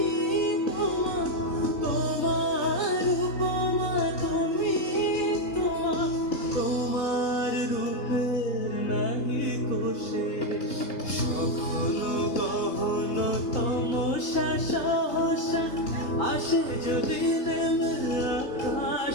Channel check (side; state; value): right; late; 3.9 ms